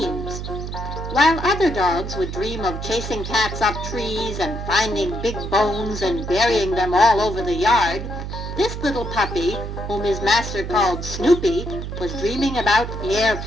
While other dogs would dream of chasing cats up trees and finding big bones and burying them all over the yard, this little puppy, whom his master called Snoopy, was dreaming about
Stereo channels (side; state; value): right; noise; hum, 6 dB below the sound